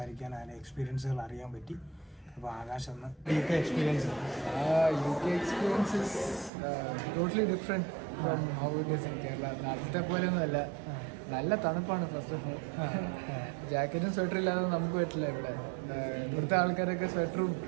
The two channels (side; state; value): left; drops out; at 6.5 s